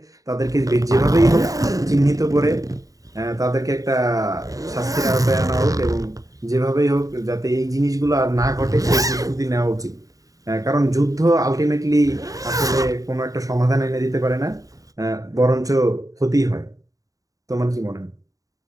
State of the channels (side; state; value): left; late; 0.17 ms